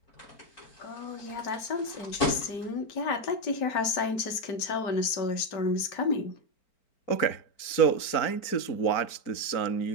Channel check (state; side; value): late; right; 4.4 ms